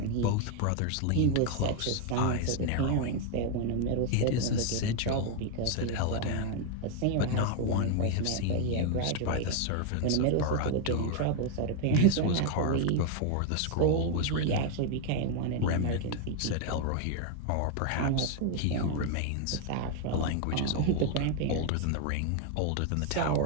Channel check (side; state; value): both; different; correlation 0.01